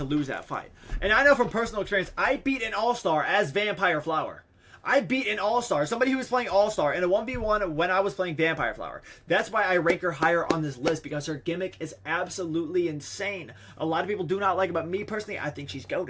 lose that fight. And I know from personal experience, I beat an All-Star as Vampire Flower. I beat an All-Star, somebody who was playing All-Star in a 1v1 when I was playing Vampire Flower. That's why I rank her higher on this list, because her gimmick is absolutely insane. A lot of people do not like it, but me personally, I think she's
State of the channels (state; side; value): identical; both; correlation 1.00